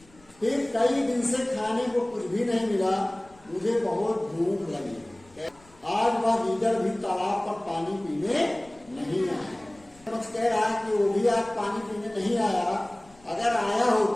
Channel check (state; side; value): noise; left; rumble, 28 dB below the sound